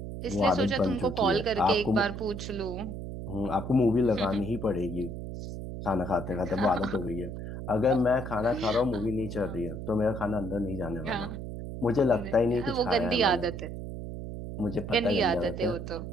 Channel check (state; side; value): noise; right; hum, 7 dB below the sound